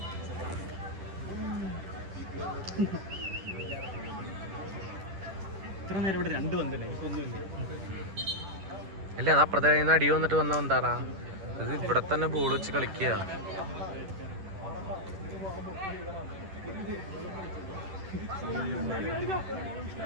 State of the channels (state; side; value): late; left; 10 ms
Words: ഇത്ര നേരം ഇവിടെ രണ്ട് വന്നല്ലേ എനിക്കൊന്നുമില്ല. അല്ല അത് അപ്പുറത്തെ കയ്യിൽ നിന്ന് അടി വന്നിട്ട് വന്ന എന്താടാ? ഇത് ഇവിടെ തന്നെ ബോൾ വെച്ച് കളിക്കുക.